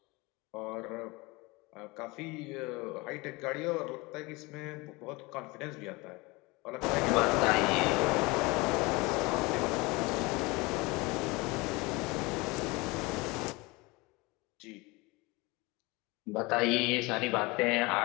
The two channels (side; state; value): right; quieter; 24.3 dB